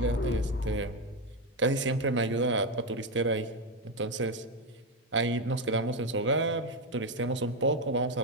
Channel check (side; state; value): both; normal; correlation 0.09